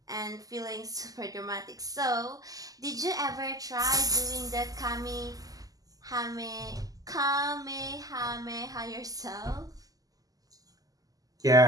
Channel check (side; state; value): left; late; 0.17 ms